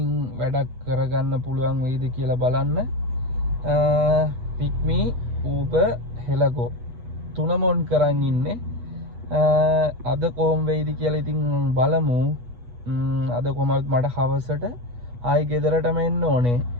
වැඩක් කරගන්න පුළුවන් වෙයිද කියලා බලන්න. පික්මි ඌබර් හෙලගෝ තුනම ඔන් කරන් ඉන්නේ. අද කොහොම වෙයිද කියලා ඉතින් බලමු. අද කොහමද මට හවසට ආයි ගෙදරටම එන්න ඕනේ.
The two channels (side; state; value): left; late; 8.2 ms